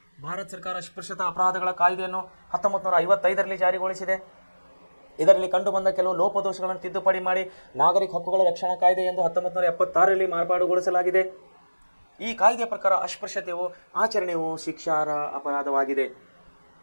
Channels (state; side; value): inverted; both; correlation -1.00